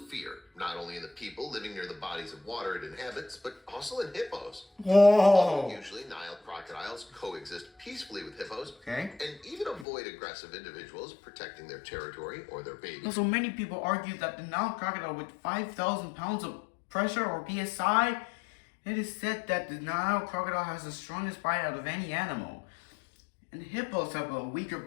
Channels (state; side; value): drops out; right; at 9.9 s